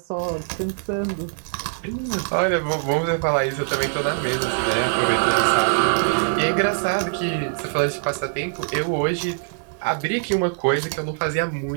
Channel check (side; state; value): left; silent; 64 dB below the other